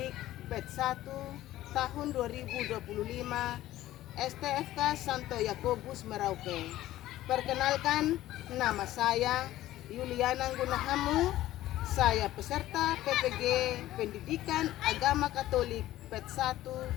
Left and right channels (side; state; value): right; quieter; 14.8 dB